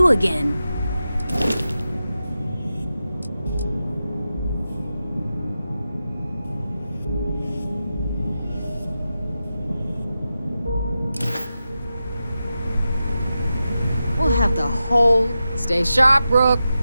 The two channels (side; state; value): both; inverted; correlation -0.91